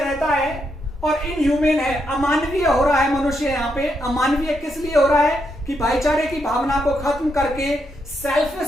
है और इनह्यूमन है, अमानवीय हो रहा है मनुष्य यहाँ पे। अमानवीय किस लिए हो रहा है? कि भाईचारे की भावना को खत्म करके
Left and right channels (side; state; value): both; normal; correlation 0.80